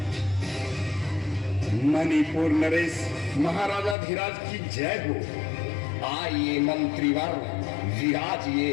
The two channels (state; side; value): drops out; right; at 4.0 s